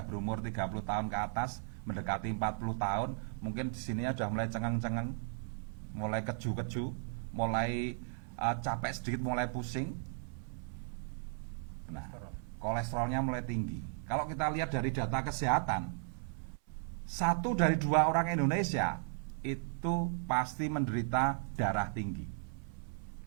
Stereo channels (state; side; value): silent; left; 54 dB below the other